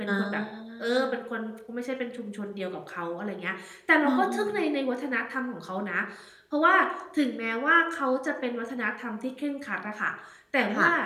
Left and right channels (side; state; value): both; identical; correlation 1.00